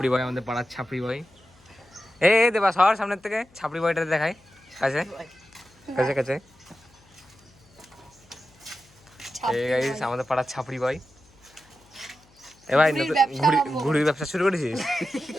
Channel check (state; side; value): noise; left; hum, 29 dB below the sound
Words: বয়, আমাদের পাড়ার ছাপড়ি বয়। দেবা সবার সামনের থেকে ছাপড়ি বয়টা দেখাই কাছে কাছে কাছে। এই গাইস আমাদের পাড়ার ছাপড়ি বয়। এ ভাই ঘুড়ির ব্যবসা শুরু করেছিস?